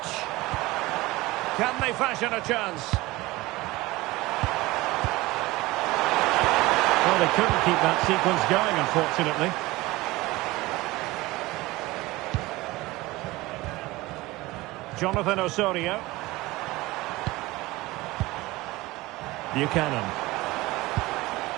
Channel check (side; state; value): left; quieter; 20.1 dB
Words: Can they fashion a chance? Well, they couldn't keep that sequence going, unfortunately. Jonathan Osorio. Buchanan.